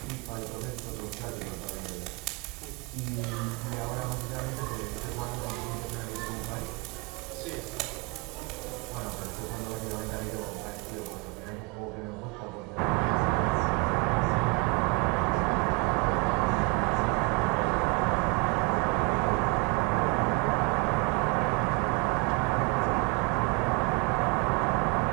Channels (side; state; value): left; quieter; 28.6 dB